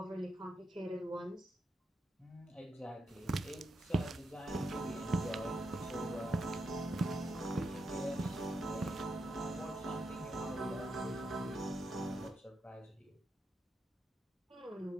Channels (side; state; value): both; normal; correlation 0.84